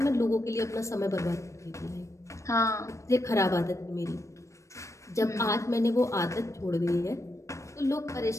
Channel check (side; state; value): right; late; 0.15 ms